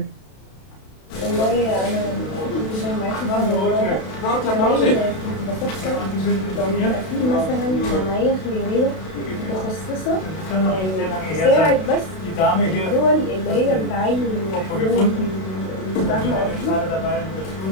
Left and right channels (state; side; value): late; right; 32 ms